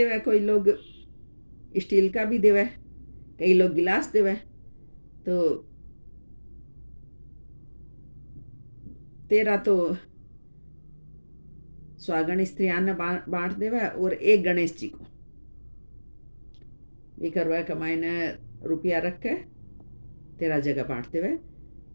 कोई लोग स्टील का भी देवे, कई लोग गिलास देवे। तो 13 तो सुहागन स्त्रियां ने बांट देवे और एक गणेश जी को भी करवा कमाई ने रुपया रख के 13 जगह बांट देवे।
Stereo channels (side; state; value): both; inverted; correlation -1.00